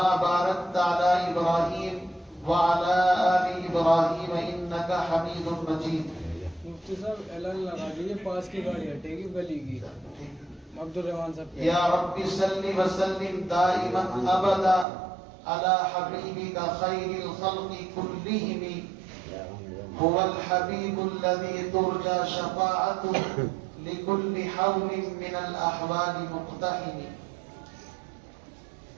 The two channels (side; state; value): left; drops out; at 14.9 s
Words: باركت على إبراهيم وعلى آل إبراهيم إنك حميد مجيد مفتی صاحب اعلان لگا دیجیے پاس کی گاڑی ہٹے گی گلی کی عبد الرحمان صاحب یا رب صل وسلم دائما ابدا على حبيبك خير الخلق كلهم هو الحبيب الذي ترجى شفاعته لكل حول من الأحوال مقتحم